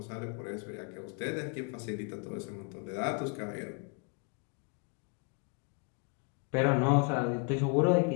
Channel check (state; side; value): quieter; right; 36.3 dB